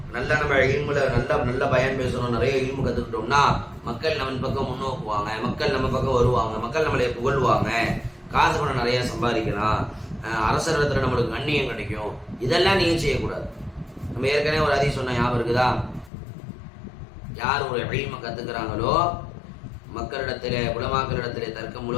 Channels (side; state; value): right; drops out; at 16.1 s